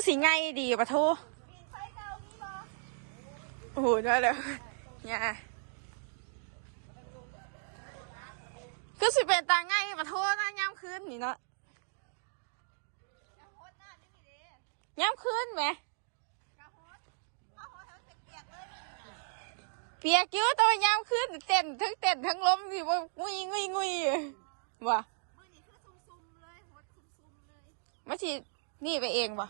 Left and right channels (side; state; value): left; silent; digital silence